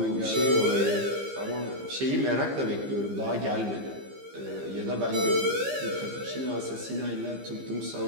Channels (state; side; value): late; left; 15 ms